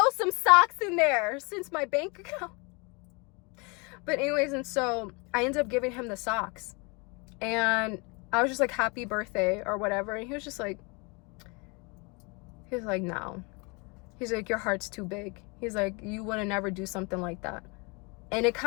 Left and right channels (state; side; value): quieter; right; 30.2 dB